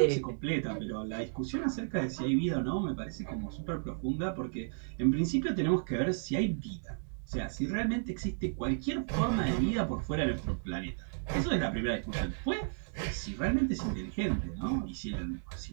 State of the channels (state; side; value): silent; left; digital silence